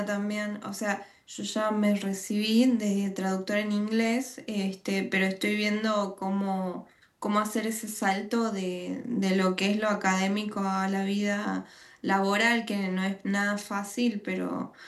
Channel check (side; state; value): both; identical; correlation 1.00